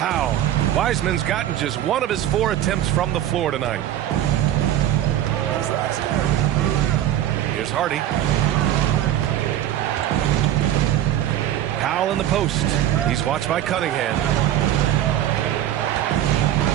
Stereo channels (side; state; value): left; quieter; 12.0 dB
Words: Wiseman's gotten just 1 of his 4 attempts from the floor tonight. Here's Hardy. Powell in the post. He's watched by Cunningham.